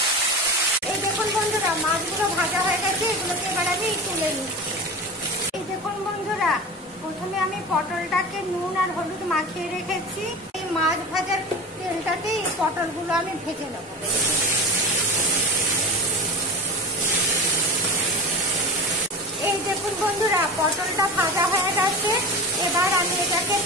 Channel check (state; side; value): normal; both; correlation 0.30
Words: এই দেখুন বন্ধুরা, মাছগুলো ভাজা হয়ে গেছে। এগুলোকে এবার আমি তুলে নিচ্ছি। এই দেখুন বন্ধুরা, প্রথমে আমি পটলটাকে নুন আর হলুদ মাখিয়ে রেখেছি। এই মাছ ভাজার তেলটাতে এই পটলগুলো আমি ভেজে নেব। এই দেখুন বন্ধুরা, পটলটা ভাজা হয়ে গেছে। এবার আমি এটাকে